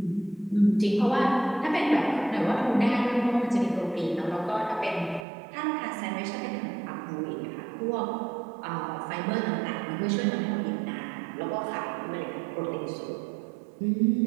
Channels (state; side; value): drops out; left; at 5.2 s